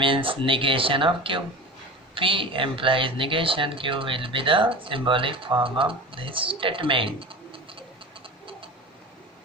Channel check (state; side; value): normal; both; correlation 0.32